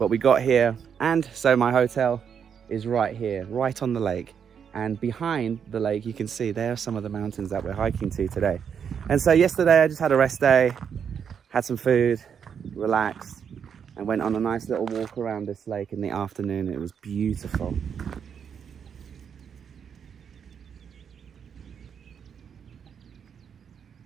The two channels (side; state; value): left; quieter; 7.5 dB